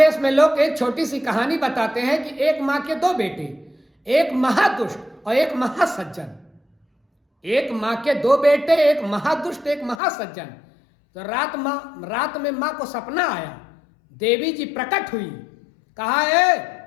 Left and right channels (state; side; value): drops out; right; at 10.0 s